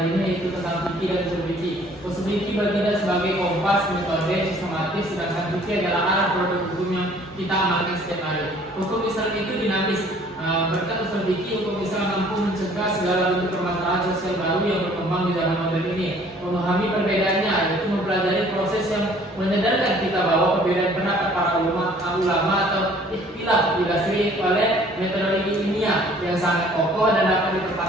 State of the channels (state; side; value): normal; both; correlation 0.55